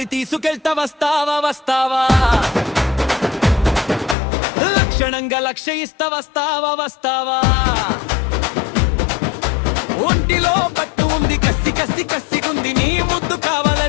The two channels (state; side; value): drops out; right; at 4.2 s